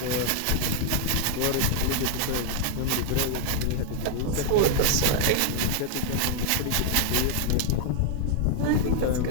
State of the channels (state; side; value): different; both; correlation 0.00